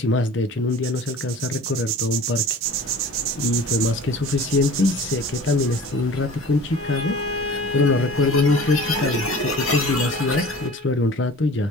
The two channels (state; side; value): normal; both; correlation 0.42